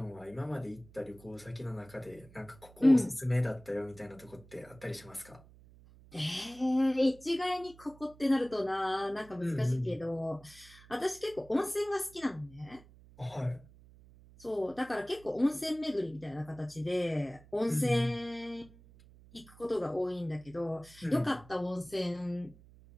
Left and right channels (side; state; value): right; noise; hum, 23 dB below the sound